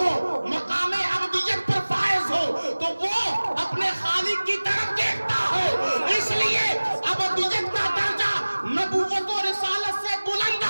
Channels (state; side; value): inverted; both; correlation -1.00